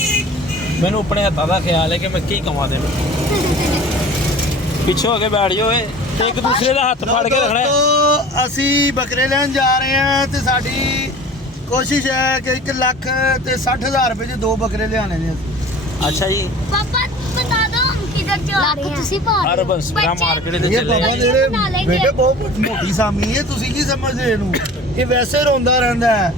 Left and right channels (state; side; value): normal; both; correlation 0.42